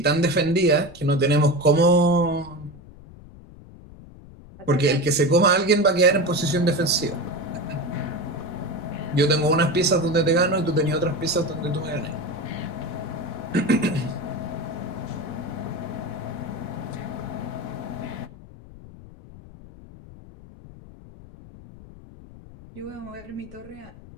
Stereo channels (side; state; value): left; noise; rumble, 19 dB below the sound